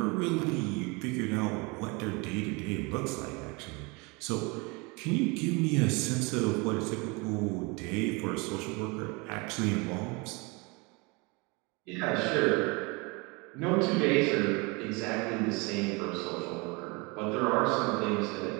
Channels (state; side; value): quieter; left; 28.0 dB